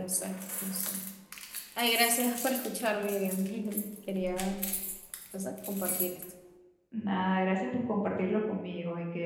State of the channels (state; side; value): identical; both; correlation 1.00